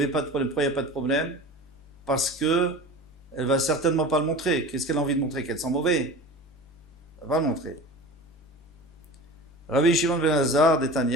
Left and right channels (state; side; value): normal; both; correlation 0.35